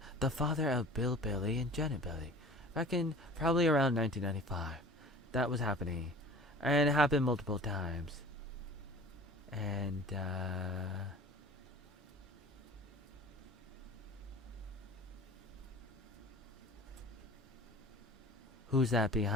of Bill Billy and Janet Billy, back in probably around 1995. That was happening, and it happened multiple times. And who's that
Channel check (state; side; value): normal; both; correlation 0.42